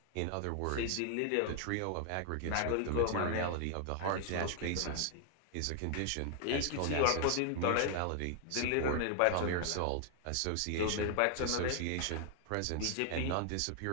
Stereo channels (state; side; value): different; both; correlation 0.00